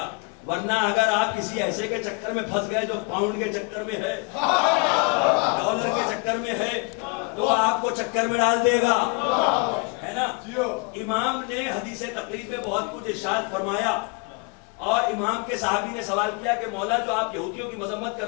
ورنہ اگر آپ کسی ایسے کے چکر میں پھنس گئے جو پاؤنڈ کے چکر میں ہے، ڈالر کے چکر میں ہے، تو آپ کو چکر میں ڈال دے گا، ہے نا. امام نے حدیث تقلید میں بہت کچھ ارشاد فرمایا، اور امام کے صحابی نے سوال کیا کہ مولا جو آپ یہودیوں کی مذمت کر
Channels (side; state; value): right; quieter; 32.0 dB